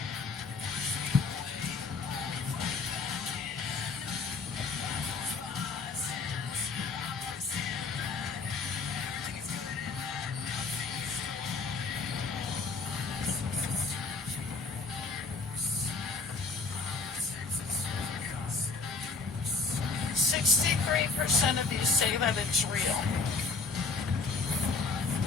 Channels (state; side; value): quieter; right; 4.2 dB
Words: "63% of you say that it's real.